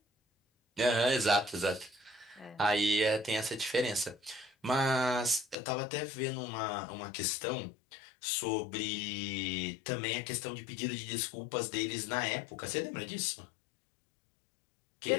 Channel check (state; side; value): drops out; right; at 5.6 s